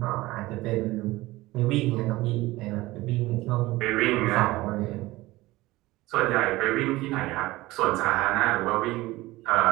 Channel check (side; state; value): left; quieter; 19.0 dB